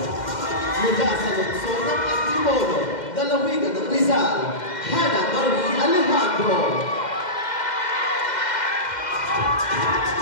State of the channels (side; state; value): right; late; 2.1 ms